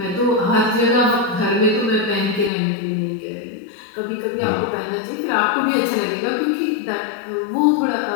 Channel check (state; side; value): drops out; right; at 2.5 s